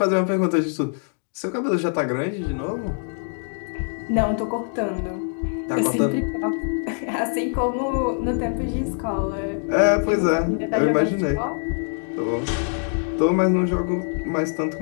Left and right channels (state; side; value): silent; right; 59 dB below the other